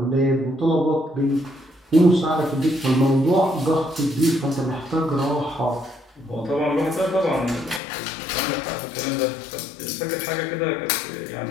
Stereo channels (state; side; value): drops out; right; at 7.8 s